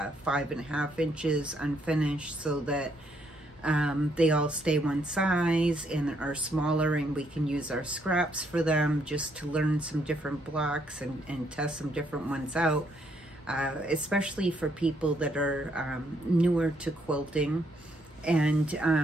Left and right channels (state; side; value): normal; both; correlation 0.72